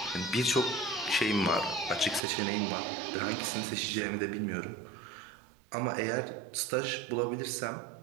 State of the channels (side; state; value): left; drops out; at 2.2 s